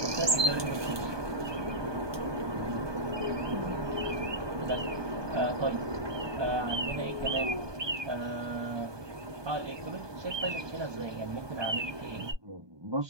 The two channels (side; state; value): left; late; 1.2 ms